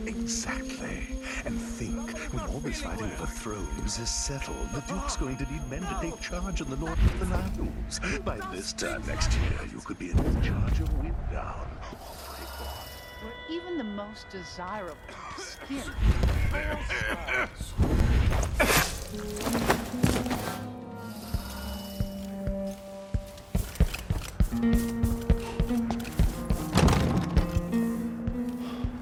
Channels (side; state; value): both; identical; correlation 1.00